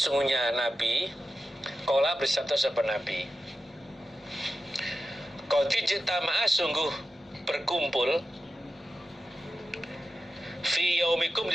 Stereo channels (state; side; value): normal; both; correlation 0.91